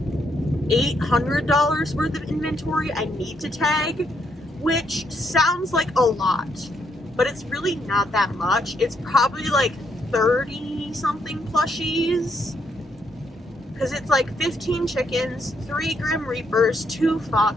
$800 worth of inventory I need to tag, which sounds like a lot, but it's really not that much. It's probably like 30 something plushies, because it's like 15 chickens, 3 Grim Reapers, 2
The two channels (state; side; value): normal; both; correlation 0.75